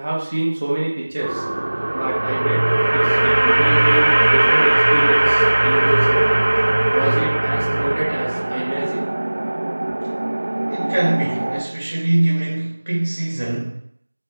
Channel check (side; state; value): both; inverted; correlation -1.00